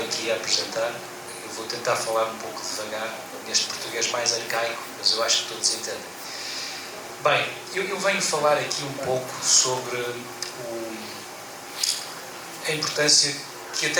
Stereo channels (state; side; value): identical; both; correlation 1.00